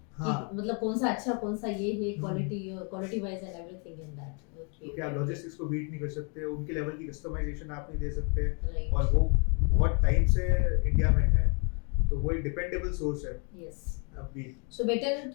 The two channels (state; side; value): quieter; right; 36.9 dB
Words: हाँ, कि मतलब कौन सा अच्छा कौन सा ये है, quality wise and everything in that. क्योंकि आप लॉजिस्टिक्स को बीट नहीं कर सकते, उनके लेवल की कस्टमाइजेशन आप नहीं दे सकते, Right. और वो बहुत टाइम से इंडिया में है, तो वो एक डिपेंडेबल सोर्स है Yes. अभी. So better